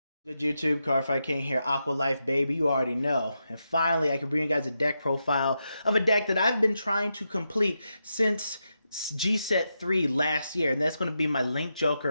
Good YouTube, Cardfight King here, Aqua Life baby, you already know. And finally, I can bring you guys a deck profile of a deck that I've been trying to complete since GBT-03 last year, and that's going to be my Link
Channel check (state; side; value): inverted; both; correlation -0.86